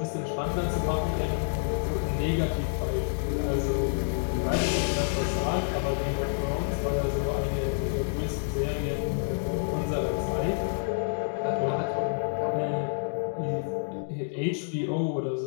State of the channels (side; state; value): right; silent; digital silence